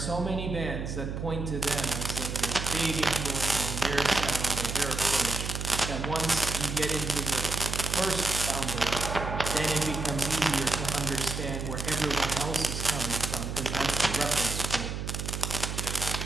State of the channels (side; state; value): right; noise; hum, 4 dB below the sound